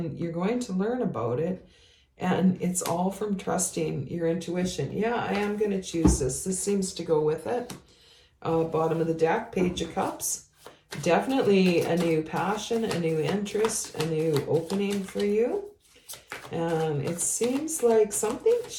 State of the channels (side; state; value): both; identical; correlation 1.00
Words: you're going to learn about it. And it's all from trusting your intuition. Yeah, I am going to choose this. This seems to go with it. Bottom of the deck, Page of Cups. Definitely a new passion, a new interest, a new opening for you. And it seems like something